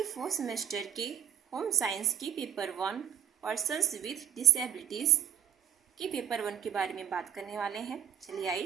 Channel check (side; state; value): left; quieter; 10.1 dB